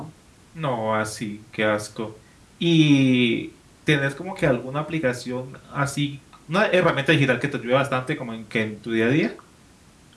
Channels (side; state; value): both; identical; correlation 1.00